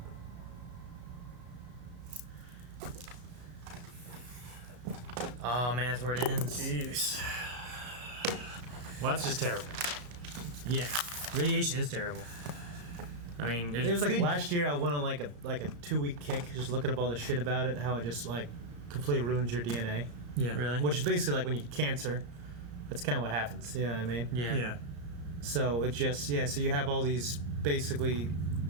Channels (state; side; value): late; left; 34 ms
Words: Oh man, that's where it ends. Jeez. Well, that's just terrible. Yeah, radiation is terrible. I mean, there's It was like good- last year I went on like a 2-week kick just looking up all the shit about it, how it just like completely ruins your DNA. Yeah. Really? Which is basically like when you get cancer. That's kind of what happens. You know what I mean? Yeah. Yeah. So it just so you have all these basically